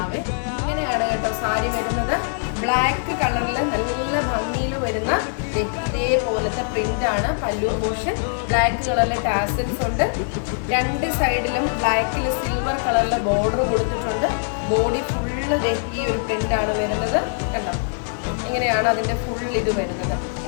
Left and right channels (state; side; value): silent; right; 64 dB below the other